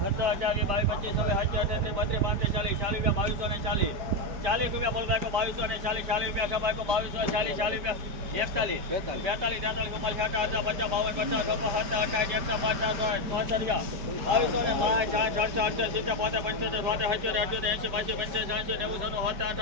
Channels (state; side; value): late; left; 5.2 ms